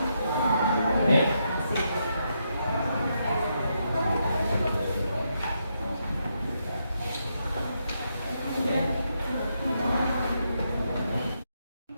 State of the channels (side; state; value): both; inverted; correlation -0.80